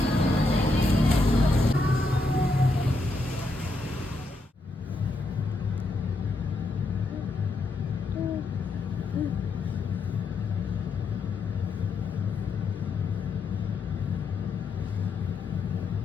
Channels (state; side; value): quieter; right; 3.1 dB